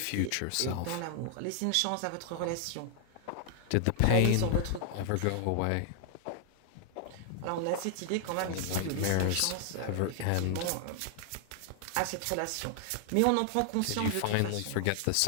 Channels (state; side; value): different; both; correlation 0.00